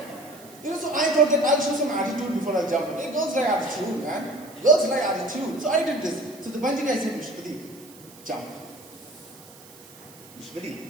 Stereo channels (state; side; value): noise; right; hiss, 21 dB below the sound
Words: You know, so I thought that I'll show some attitude before I jump. Hey, girls like attitude, man. Girls like attitude. So I did this. So the bungee guy said, Vishwadi, jump.